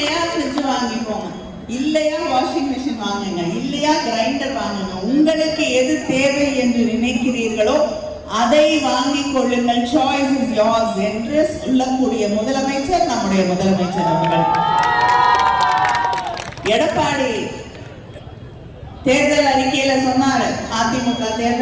ஃப்ரிட்ஜ் வாங்கிக்கோங்க, இல்லையா வாஷிங் மிஷின் வாங்குங்க, இல்லையா கிரைண்டர் வாங்குங்க. உங்களுக்கு எது தேவை என்று நினைக்கிறீர்களோ அதை வாங்கிக் கொள்ளுங்கள். சாய்ஸ் இஸ் யோர்ஸ் என்று சொல்லக்கூடிய முதலமைச்சர் நம்முடைய முதலமைச்சர் அவர்கள். எடப்பாடி தேர்தல் அறிக்கையில சொன்னாரு, அதிமுக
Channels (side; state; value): both; identical; correlation 1.00